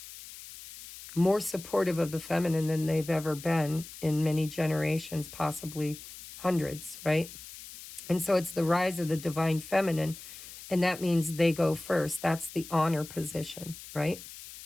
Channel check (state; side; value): noise; left; hiss, 15 dB below the sound